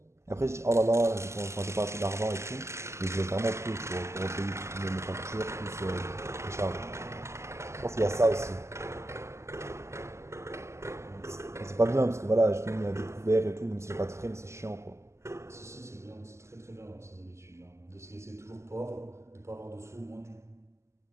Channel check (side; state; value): left; late; 0.13 ms